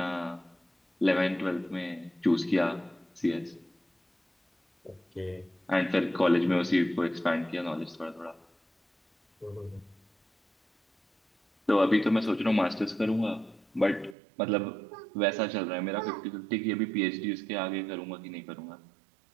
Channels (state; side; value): drops out; left; at 14.2 s